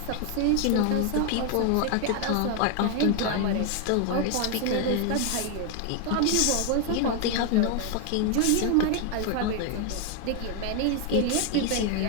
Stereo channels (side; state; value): both; different; correlation 0.01